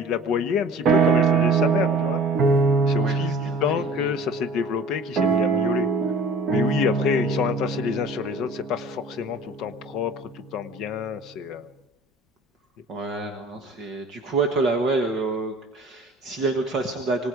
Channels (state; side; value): normal; both; correlation 0.46